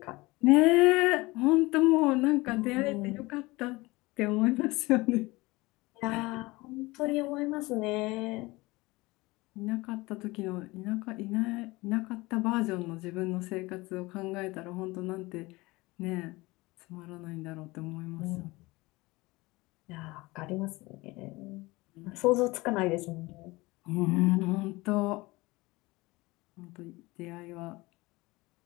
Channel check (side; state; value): right; quieter; 22.0 dB